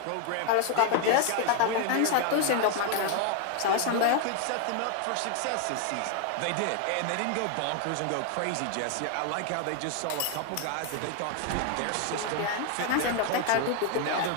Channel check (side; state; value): both; different; correlation 0.01